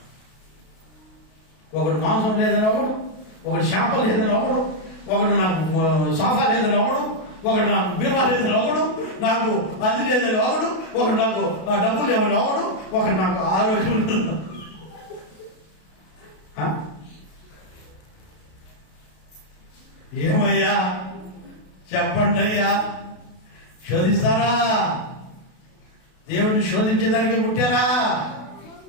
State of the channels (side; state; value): right; late; 33 ms